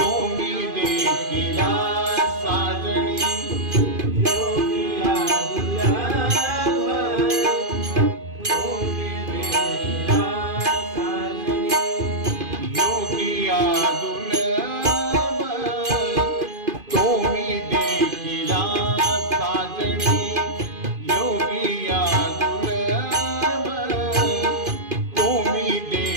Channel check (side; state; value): left; late; 2.5 ms